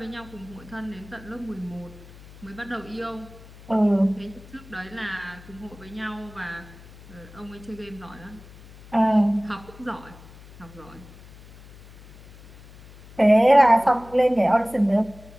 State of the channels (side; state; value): left; noise; hum, 20 dB below the sound